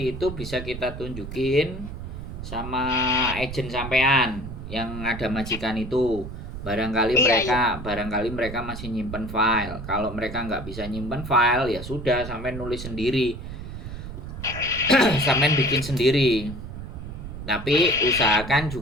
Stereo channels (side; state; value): right; noise; rumble, 9 dB below the sound